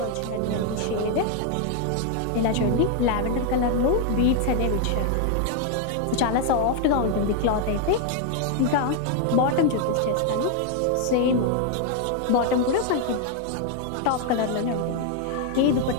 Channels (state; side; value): different; both; correlation 0.00